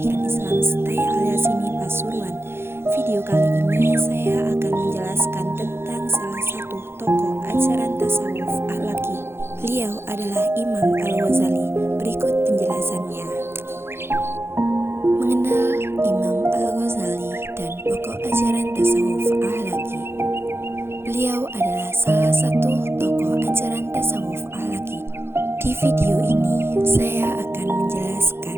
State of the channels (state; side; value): late; left; 0.12 ms